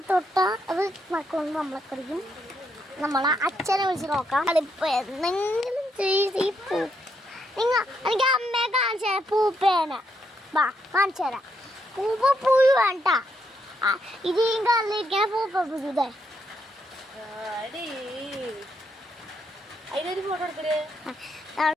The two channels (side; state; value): both; normal; correlation 0.77